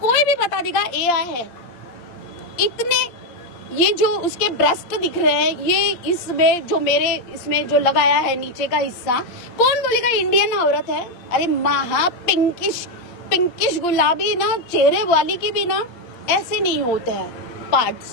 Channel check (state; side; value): late; right; 8.6 ms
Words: कोई भी बता देगा एआई है। इतने ये जो उसके ब्रेस्ट दिख रहे हैं, ये इसमें जो मेरे इसमें जो लगाया है नीचे का हिस्सा, कौन बोलेगा इंडियन औरत है? अरे महा पिंकिश गुलाबी ना चेहरे वाली की भी ना ऐसे नहीं होते हैं